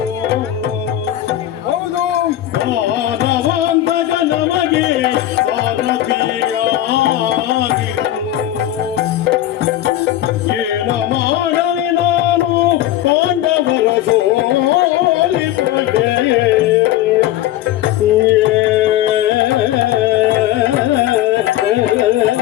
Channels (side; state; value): right; quieter; 13.4 dB